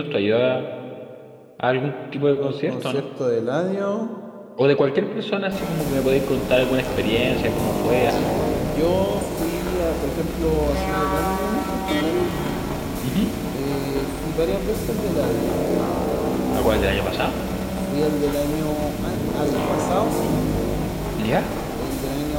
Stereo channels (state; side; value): identical; both; correlation 1.00